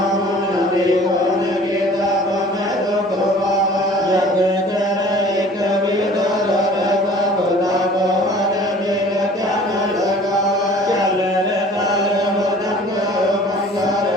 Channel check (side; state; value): both; normal; correlation 0.48